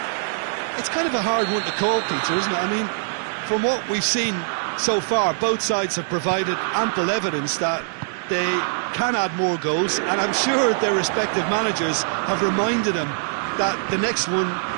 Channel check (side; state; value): left; silent; digital silence